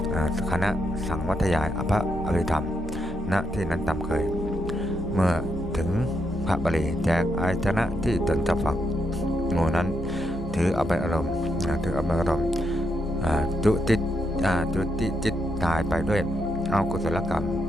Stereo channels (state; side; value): normal; both; correlation 0.80